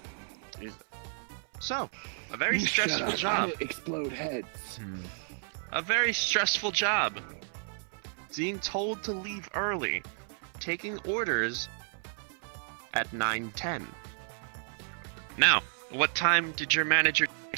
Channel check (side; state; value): left; silent; 56 dB below the other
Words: So, a very You shut stressful up. job. I'll explode heads. A very stressful job. Being told to leave early. Taking orders at 9:10. Now, what time did your manager